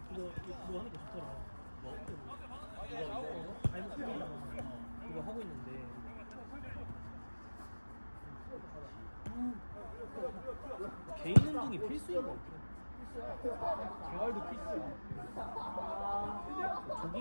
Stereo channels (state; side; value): inverted; both; correlation -1.00